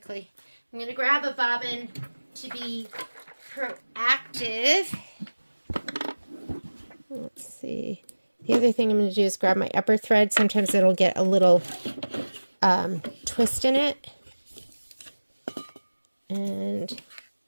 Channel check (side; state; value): both; inverted; correlation -1.00